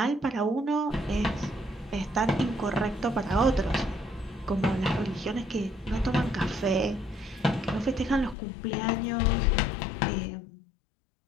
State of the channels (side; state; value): right; drops out; at 8.3 s